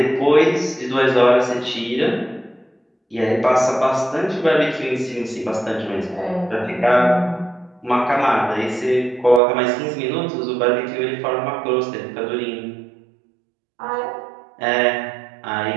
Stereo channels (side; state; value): left; drops out; at 9.4 s